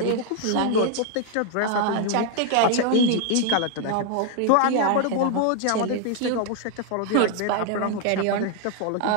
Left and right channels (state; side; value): different; both; correlation 0.00